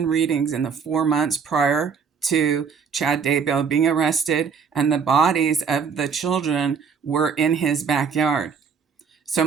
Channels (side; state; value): left; quieter; 6.1 dB